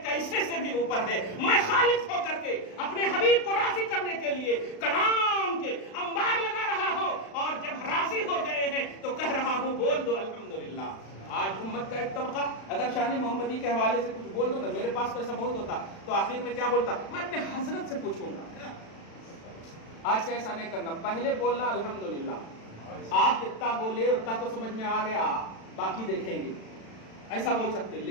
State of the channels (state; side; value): late; right; 36 ms